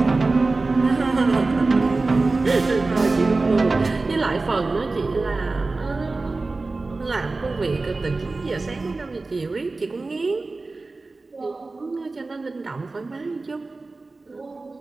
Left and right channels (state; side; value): quieter; left; 3.5 dB